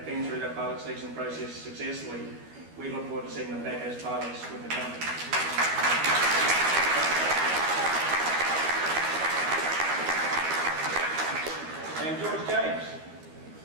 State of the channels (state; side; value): late; left; 12 ms